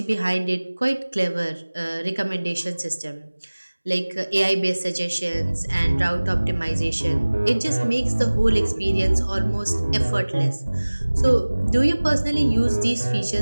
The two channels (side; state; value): both; inverted; correlation -1.00